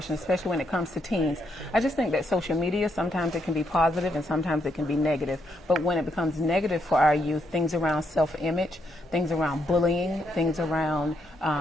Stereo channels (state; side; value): normal; both; correlation 0.77